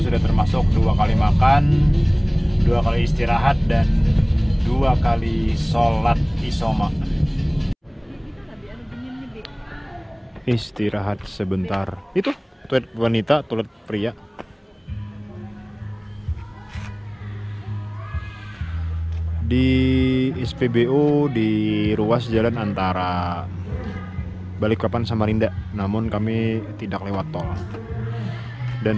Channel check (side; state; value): both; identical; correlation 1.00